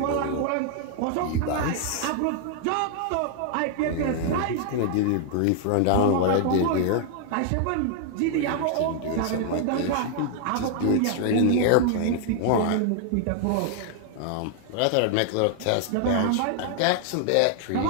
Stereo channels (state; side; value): different; both; correlation 0.00